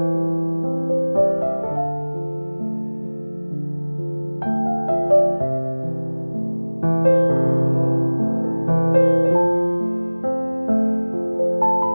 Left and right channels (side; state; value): both; inverted; correlation -1.00